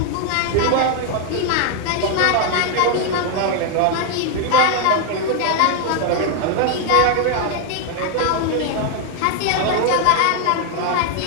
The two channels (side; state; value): both; different; correlation 0.00